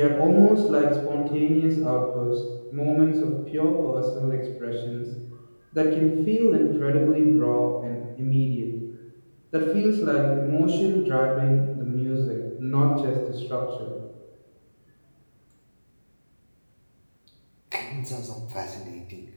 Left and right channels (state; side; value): inverted; both; correlation -1.00